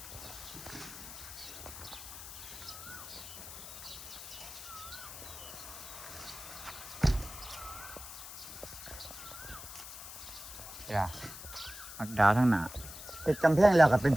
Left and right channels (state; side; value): noise; left; hiss, 12 dB below the sound